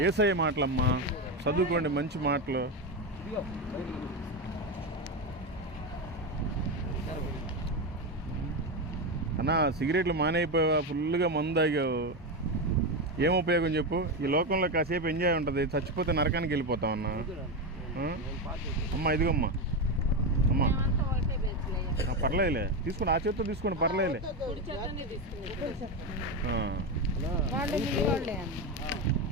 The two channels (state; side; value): normal; both; correlation 0.13